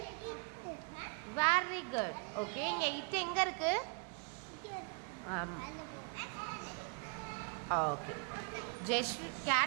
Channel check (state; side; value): quieter; left; 34.9 dB